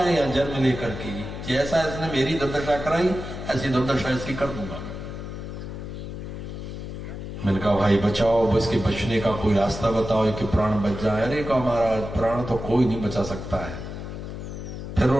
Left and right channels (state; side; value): noise; left; hum, 8 dB below the sound